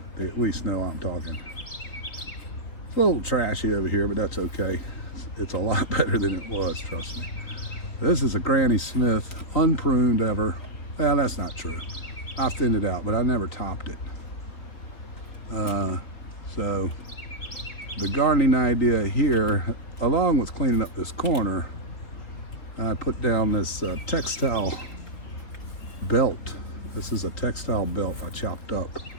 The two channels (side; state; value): right; late; 3.8 ms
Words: They at least know I'm talking. It's a little trashy over here, but that's okay. It's a lot better than it was, trust me. This is a Granny Smith, unpruned ever. Well, that's not true. I thinned it out, but I never topped it. So the gardening idea here, along with cleaning up this corner, I put down this textile belt. This is a textile belt I chopped up.